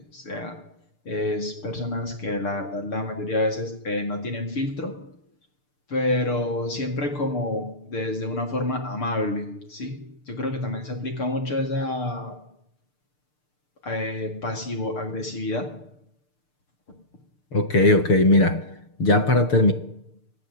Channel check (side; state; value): right; late; 6.7 ms